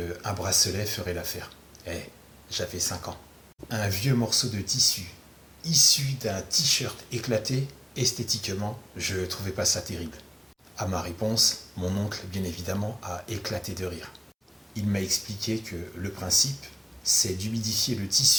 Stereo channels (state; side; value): identical; both; correlation 1.00